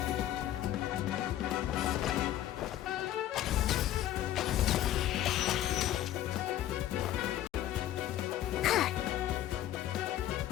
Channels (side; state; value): right; quieter; 12.7 dB